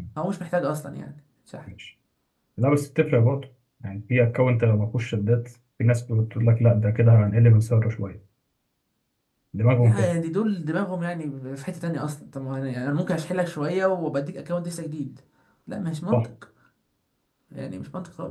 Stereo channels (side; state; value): both; identical; correlation 1.00